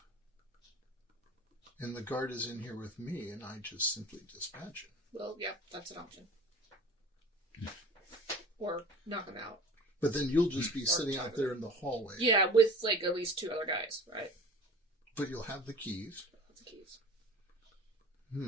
and the guard is in here with me and I just simply dispatch him. Well, yeah, that's an option. Or knock him out. But then you'll just be sitting out there in the hallway. Yeah, with like at least 2 other guys, right? But you'll have the keys. That's the keys.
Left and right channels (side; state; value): both; normal; correlation 0.42